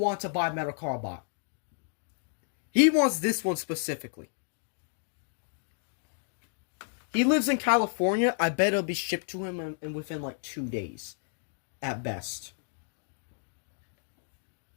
to buy Metal Cardbot. He wants this one specifically. He lives in California. I bet it'll be shipped to him within like 2 days. At best.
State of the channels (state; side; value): silent; right; digital silence